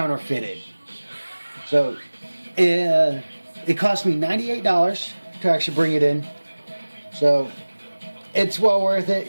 So it cost me $98 to actually bring it in. So it's well worth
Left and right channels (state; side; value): inverted; both; correlation -1.00